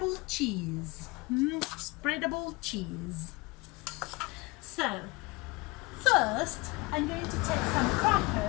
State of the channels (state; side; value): quieter; right; 24.7 dB